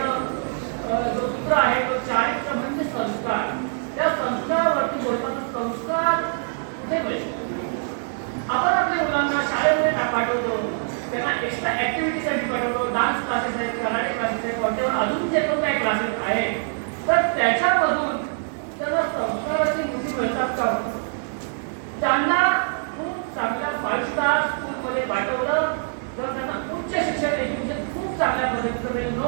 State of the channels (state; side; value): silent; left; 63 dB below the other